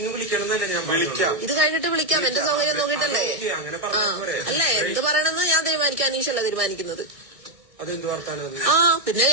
വിളിക്കണമെന്നല്ല ഞാൻ വിളിക്കാം. ഇത് കഴിഞ്ഞിട്ട് വിളിക്കാം, എന്റെ സൗകര്യം നോക്കിട്ടല്ലേ. അല്ലേ, എന്ത് പറയണമെന്ന് ഞാൻ തീരുമാനിക്കാം. അനീഷല്ല തീരുമാനിക്കുന്നത്. പിന്നെ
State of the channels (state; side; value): late; left; 1.6 ms